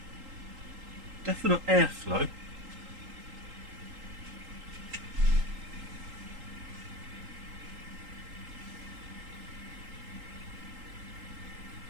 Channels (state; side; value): late; left; 3.8 ms